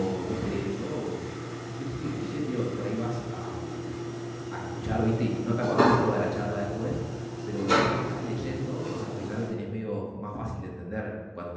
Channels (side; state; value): both; identical; correlation 1.00